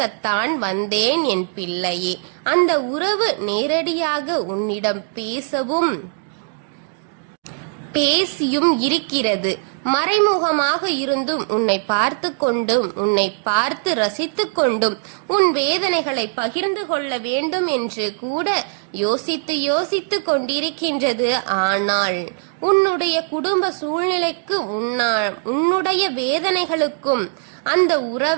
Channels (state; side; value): silent; left; 57 dB below the other